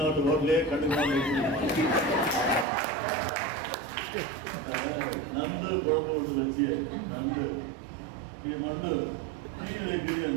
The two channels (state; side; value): drops out; left; at 2.7 s